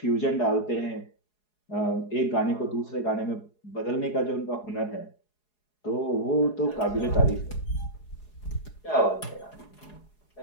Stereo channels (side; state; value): right; late; 4.8 ms